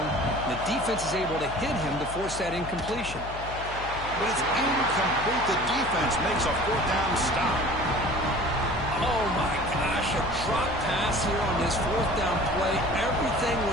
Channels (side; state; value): left; noise; hum, 11 dB below the sound